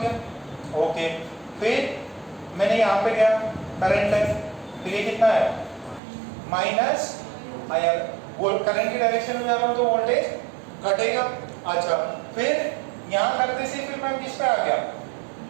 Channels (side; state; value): left; drops out; at 6.0 s